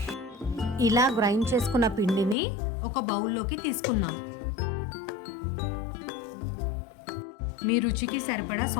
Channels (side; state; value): right; drops out; at 2.4 s